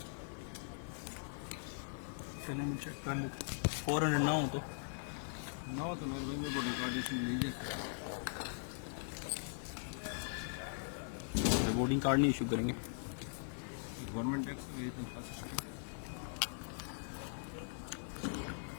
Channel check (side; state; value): right; silent; 51 dB below the other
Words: चलो मैं चेक कर लेते। 400 ना हो तो ना हो तो मेरे भाई मेरे को रिकॉर्डेशन नहीं दे सकता। वोटिंग कार्ड नहीं इशू करेंगे। गवर्नमेंट टैक्स मेरी तनख्वाह से